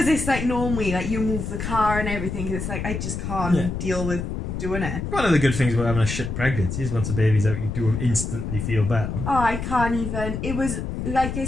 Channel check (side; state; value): left; noise; rumble, 4 dB below the sound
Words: it's like normally like you move the car and everything. Cause it's like I just can't deal with doing it. One of the good things about having a shit pregnancy is once the baby's out, you do instantly feel better. Oh, I can't even. It was like I